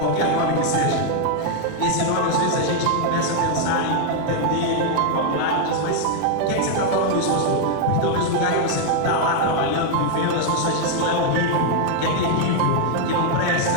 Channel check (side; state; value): both; different; correlation 0.00